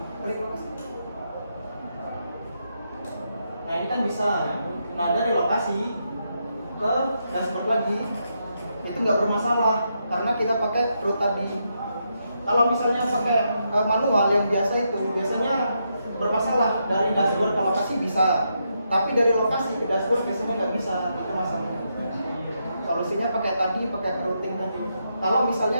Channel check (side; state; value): both; inverted; correlation -0.81